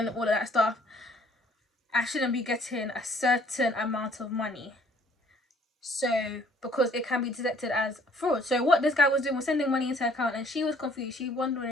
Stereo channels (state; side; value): normal; both; correlation 0.59